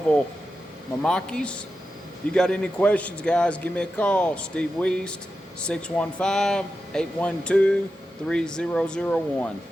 Mamakis. If you got any questions, guys, give me a call. Steve Weist, 615-812-3001.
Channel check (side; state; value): both; normal; correlation 0.90